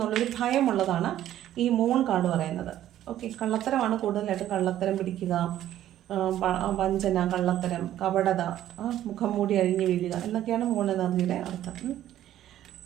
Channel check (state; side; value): quieter; left; 12.4 dB